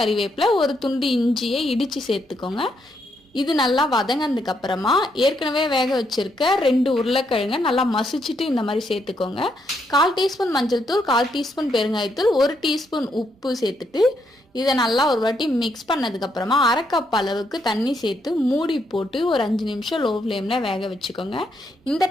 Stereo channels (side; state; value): both; normal; correlation 0.77